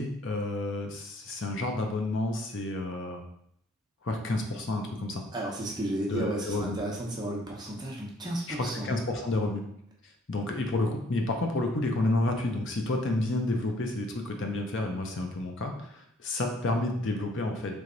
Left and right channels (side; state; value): both; normal; correlation 0.62